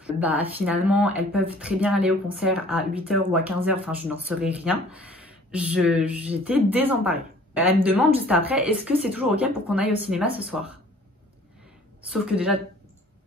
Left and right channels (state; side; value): normal; both; correlation 0.53